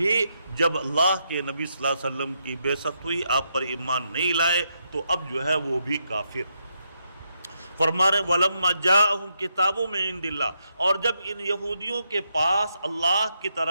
جب اللہ کے نبی صلی اللہ علیہ وسلم کی بعثت ہوئی، آپ پر ایمان نہیں لائے، تو اب جو ہے وہ بھی کافر۔ فرما رہے وَلَمَّا جَاءَهُمْ كِتَابٌ مِّن عِندِ اللَّهِ، اور جب ان یہودیوں کے پاس اللہ کی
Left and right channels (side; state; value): both; inverted; correlation -0.80